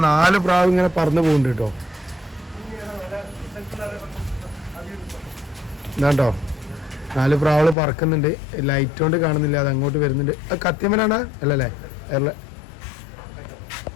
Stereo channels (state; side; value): drops out; right; at 7.8 s